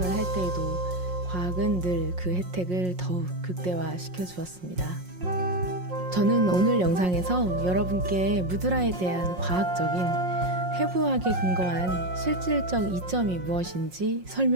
할 때에도 과학은 늘 그 혜택을 더욱 극대화시켜 주었습니다. 저는 오늘 영상에서 여러분께 무드라에 대한 과학적인 해부학에 근거한 실질적 이점이 무엇인지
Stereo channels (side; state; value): left; late; 5.5 ms